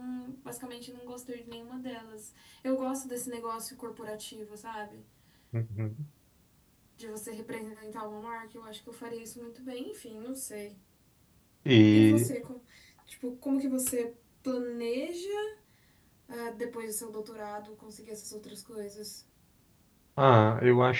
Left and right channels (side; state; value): both; identical; correlation 1.00